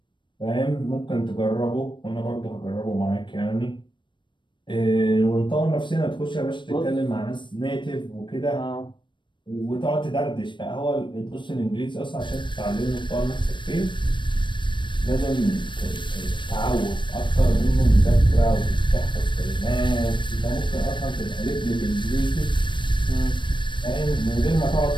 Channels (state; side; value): late; right; 0.23 ms